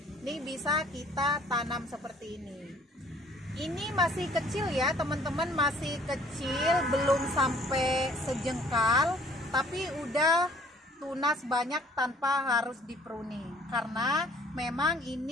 Ini bisa kita tanam seperti ini. Ini masih kecil ya teman-teman, masih kecil, belum sampai sejengkal, tapi udah tunas banyak tanpa harus dipruning. Karena memang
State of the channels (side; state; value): both; normal; correlation 0.56